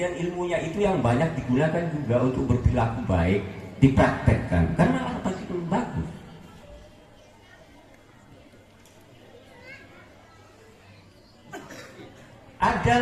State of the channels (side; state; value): both; identical; correlation 1.00